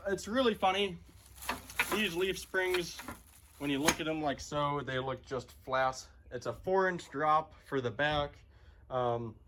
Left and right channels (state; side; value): identical; both; correlation 1.00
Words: It's really funny. These leaf springs, when you look at them like so, they look just flat. It's a 4-inch drop for the back. I